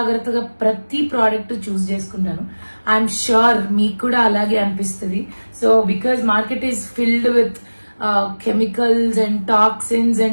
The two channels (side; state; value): both; inverted; correlation -1.00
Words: ప్రతి ప్రోడక్ట్ చూస్ చేసుకుంటాను. ఐఎమ్ ష్యూర్ మీకు కూడా అలాగే అనిపిస్తుంది. So because market is filled with chemicals and toxins